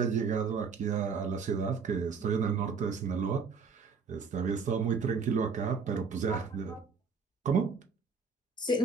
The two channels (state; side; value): quieter; left; 5.4 dB